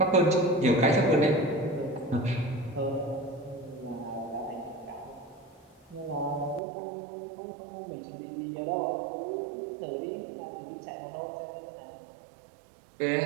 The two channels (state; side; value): drops out; left; at 6.6 s